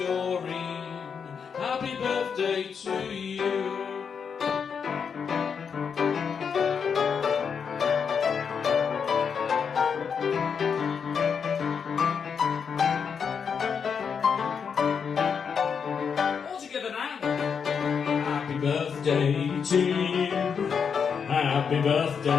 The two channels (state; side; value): quieter; right; 6.5 dB